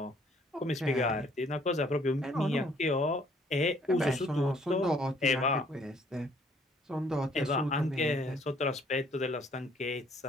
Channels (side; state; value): both; normal; correlation 0.62